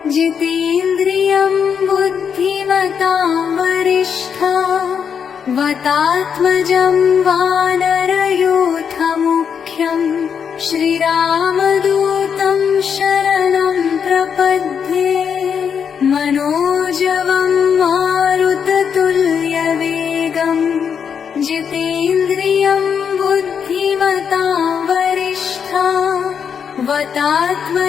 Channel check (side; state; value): right; quieter; 7.2 dB